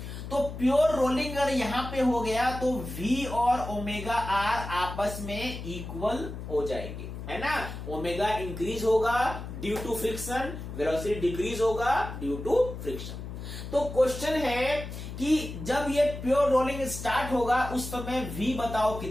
तो प्योर रोलिंग अगर यहां पे हो गया तो v और ओमेगा आर आपस में इक्वल हो जाएंगे, है ना। ओमेगा इंक्रीज होगा due to friction, velocity decrease होगा ड्यू टू फ्रिक्शन। तो क्वेश्चन है कि जब ये प्योर रोलिंग स्टार्ट होगा उस समय v बताओ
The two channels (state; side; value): noise; left; hum, 9 dB below the sound